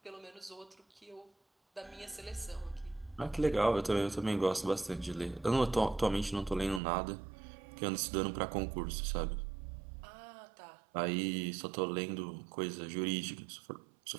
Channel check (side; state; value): left; drops out; at 6.8 s